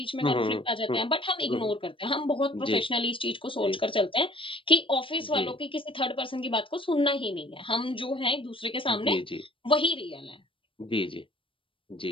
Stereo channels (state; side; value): late; right; 0.25 ms